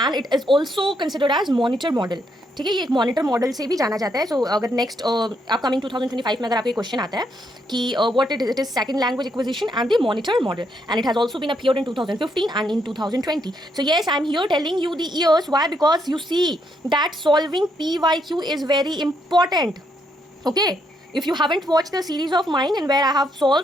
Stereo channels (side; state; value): both; normal; correlation 0.75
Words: and it is also considered as monitor model. ठीक है, ये एक monitor model से भी जाना जाता है. सो अगर नेक्स्ट अपकमिंग 2025 में अगर आपको क्वेश्चन आता है कि what it is second language acquisition and the monitor model, and it has also been appeared in 2015 and in 2020. So yes, I am here telling you the years. Why? Because you see that solving PYQ is very important. Okay, if you haven't watched the series of mine in where I have